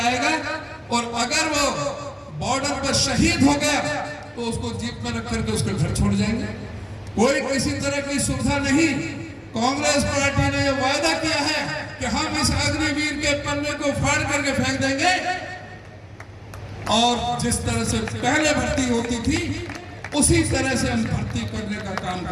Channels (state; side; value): identical; both; correlation 1.00